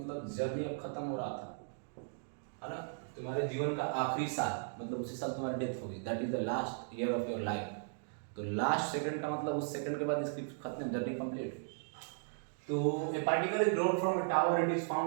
journey अब खत्म हो रहा था, है ना, तुम्हारे जीवन का आखिरी साल, मतलब उसी साल तुम्हारी डेथ होगी, that is the last year of your life. तो लास्ट सेकंड का मतलब उस सेकंड के बाद इसकी खत्म, जर्नी कंप्लीट। तो a particle is dropped from a tower, it is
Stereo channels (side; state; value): left; silent; digital silence